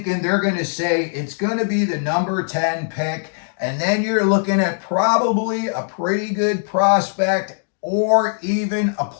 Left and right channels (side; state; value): right; silent; digital silence